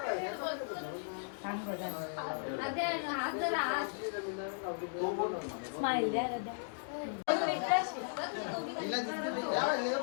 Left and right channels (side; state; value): right; silent; digital silence